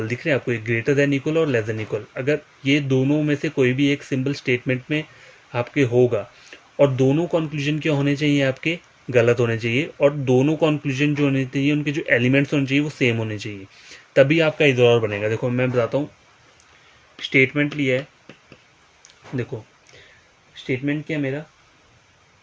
दिख रहे हैं आपको, एक ग्रेटर देन इक्वल और लेस देन इक्वल, अगर ये दोनों में से कोई भी एक सिंबल स्टेटमेंट में आपके होगा, और दोनों कंक्लूजन क्या होने चाहिए आपके, गलत होने चाहिए, और दोनों कंक्लूजन जो होने चाहिए उनके जो एलिमेंट्स होने चाहिए वो सेम होने चाहिए, तभी आपका ईदर और बनेगा। देखो मैं बताता हूँ, स्टेटमेंट लिया है, देखो स्टेटमेंट क्या है मेरा,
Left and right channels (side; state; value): both; identical; correlation 1.00